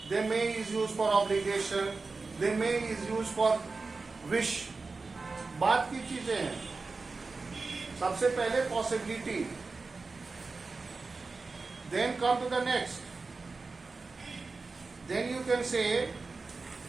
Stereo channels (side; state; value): left; quieter; 4.0 dB